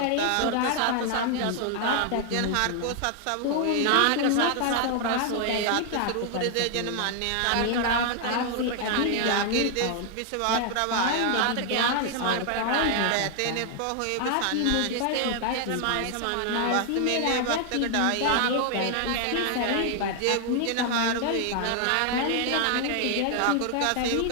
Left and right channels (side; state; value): both; different; correlation 0.00